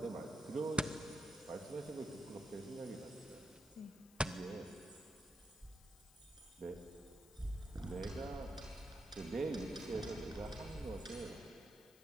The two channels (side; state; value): left; noise; hiss, 22 dB below the sound